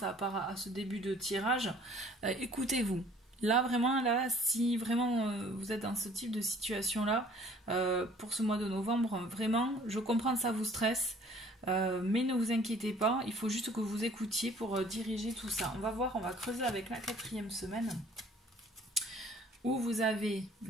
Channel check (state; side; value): normal; both; correlation 0.54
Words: à ce début de tirage, écoutez-vous. Là vraiment, si vraiment vous êtes dans ce type de situation là pour ce mois de novembre, vraiment, je comprends que ça vous stresse. Mais ne vous inquiétez pas, il faut juste que vous écoutiez pour diriger tout ça. On va creuser avec la quatrième semaine, où vous avez